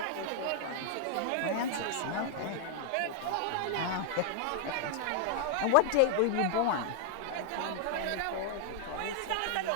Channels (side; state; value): both; different; correlation 0.00